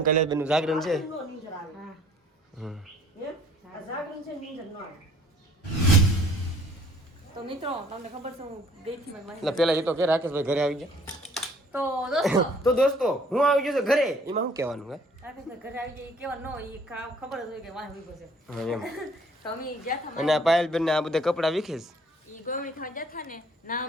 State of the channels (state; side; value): normal; both; correlation 0.58